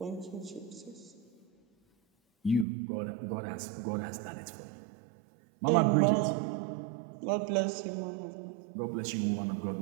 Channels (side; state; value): left; drops out; at 2.7 s